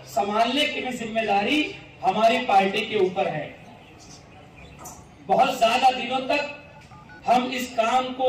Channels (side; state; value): both; identical; correlation 1.00